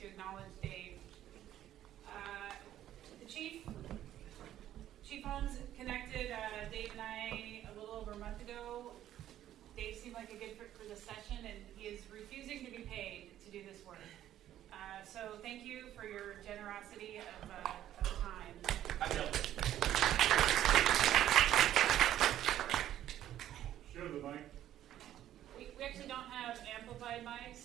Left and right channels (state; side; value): quieter; left; 12.1 dB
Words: acknowledge Dave. The Chief Holmes connected Dave and I a little over a month ago. Dave seemed like a good fit for the session, and he is refusing to be paid to do this work. So thank you for your generosity of time. I know. Show the mic. We actually don't have amplified